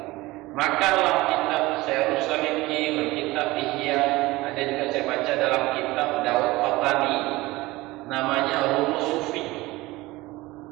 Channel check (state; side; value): quieter; left; 20.0 dB